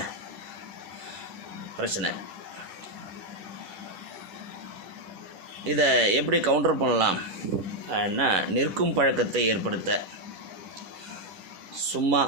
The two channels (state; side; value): late; left; 10 ms